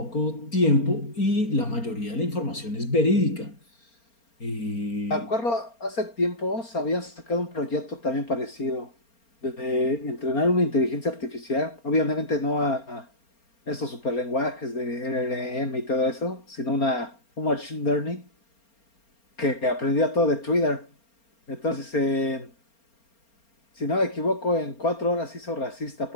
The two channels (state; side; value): late; right; 4.3 ms